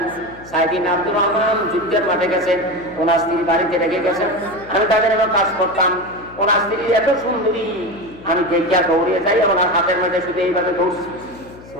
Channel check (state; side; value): noise; left; hum, 20 dB below the sound